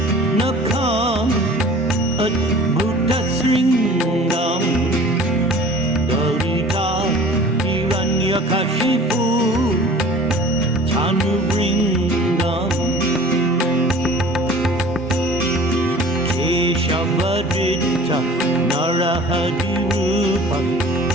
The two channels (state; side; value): normal; both; correlation 0.45